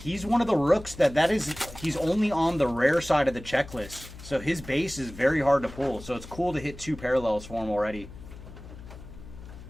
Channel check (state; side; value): noise; left; hum, 15 dB below the sound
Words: one of the rooks he's only on the rare side of the checklist. So his base is very hard to pull. So it's cool to hit 2 parallels for him already.